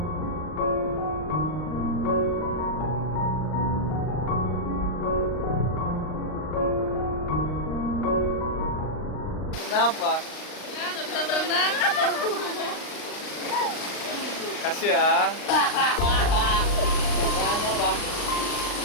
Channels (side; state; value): right; late; 39 ms